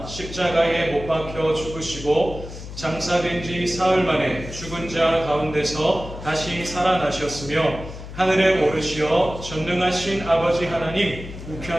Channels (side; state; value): left; noise; hum, 12 dB below the sound